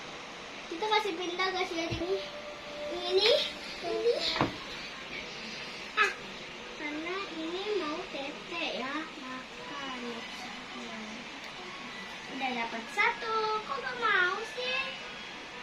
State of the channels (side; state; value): both; identical; correlation 1.00